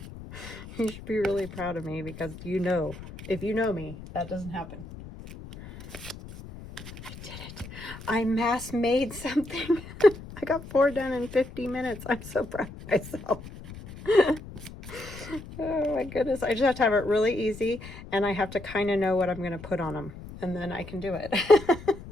You should be really proud of me because you know, if you know me, that doesn't happen. I did it. I mass made something. I got 4 done in 50 minutes. I'm so proud of myself. Oh my goodness. I just have to have it really easy and I have to kind of know what I'm going to put on them and then I can do it.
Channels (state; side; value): noise; left; rumble, 14 dB below the sound